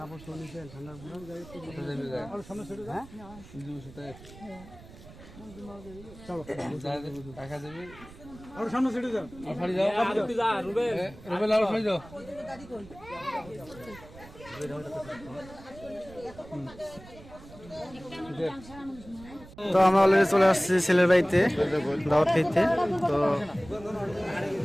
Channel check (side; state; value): right; noise; rumble, 19 dB below the sound